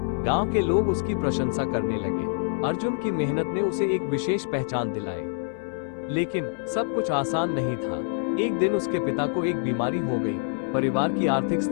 गांव के लोग उसकी प्रशंसा करने लगे। अर्जुन की मेहनत ने उसे एक विशेष पहचान दिलाई। लेकिन सब कुछ आसान नहीं था। एक दिन उसके पिता को एक बीमारी हो गई। परिवार की आर्थिक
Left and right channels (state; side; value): silent; right; 61 dB below the other